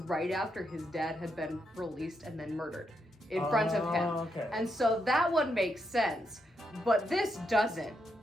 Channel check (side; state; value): both; normal; correlation 0.82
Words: after his dad had been released and then murdered in front of him. Okay. And so that one makes sense, but this doesn't.